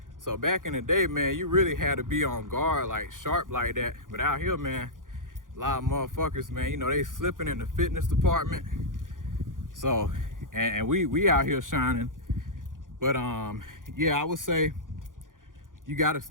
So back in the day, man, you really had to be on guard, like sharp like that. But out here, man, a lot of motherfuckers, man, you know, they slipping in the fitness department. So, and we out here shining. But yeah, I would say you gotta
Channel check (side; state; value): left; late; 0.89 ms